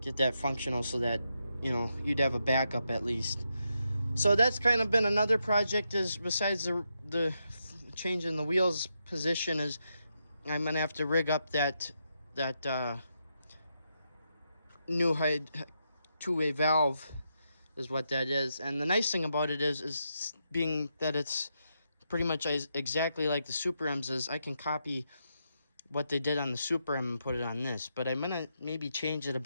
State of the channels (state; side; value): inverted; both; correlation -0.83